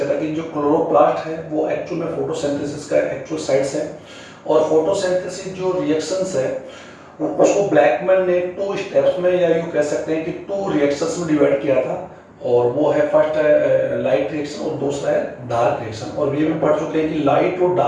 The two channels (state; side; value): identical; both; correlation 1.00